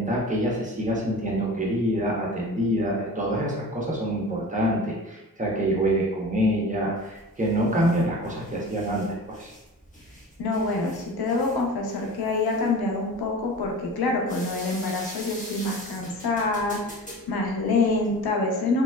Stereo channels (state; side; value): normal; both; correlation 0.36